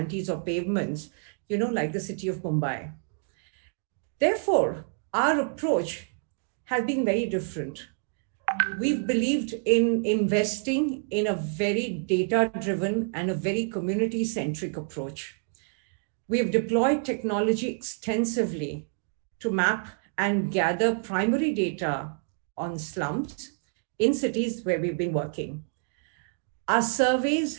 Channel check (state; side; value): silent; left; 59 dB below the other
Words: or pavements, like the city of Mumbai. Therefore, our approach has been very different. We've believed in investing in a very data-driven and a very community-centric approach. We have deployed technology extensively to map and gather primary data on slums in cities where we've been working. Our surveys